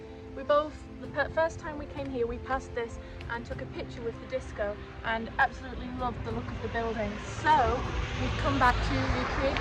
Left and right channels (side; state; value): both; identical; correlation 1.00